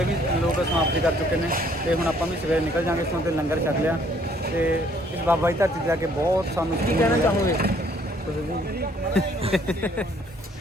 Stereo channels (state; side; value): normal; both; correlation 0.63